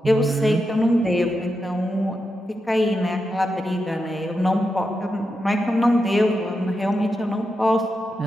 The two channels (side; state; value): both; normal; correlation 0.87